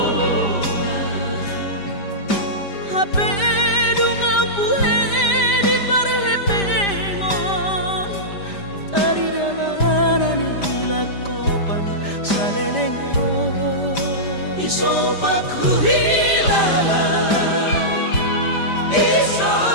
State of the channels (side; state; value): right; late; 5.0 ms